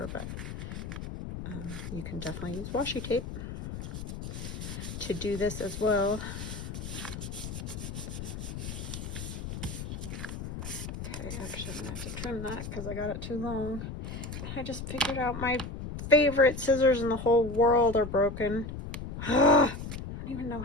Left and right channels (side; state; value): left; noise; rumble, 7 dB below the sound